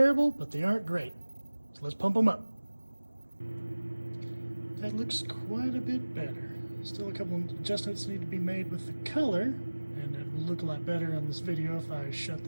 but they aren't great, so let's pump them up. That looks quite a bit better. Still a couple of adjustments need to be made with the color, and it will look a lot better on this video if I shut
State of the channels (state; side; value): inverted; both; correlation -1.00